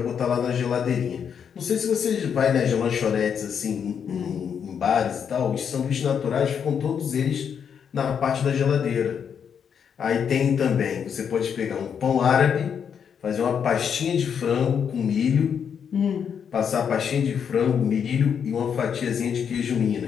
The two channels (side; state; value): right; quieter; 7.5 dB